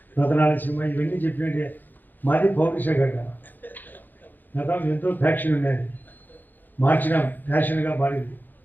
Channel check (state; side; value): late; right; 0.088 ms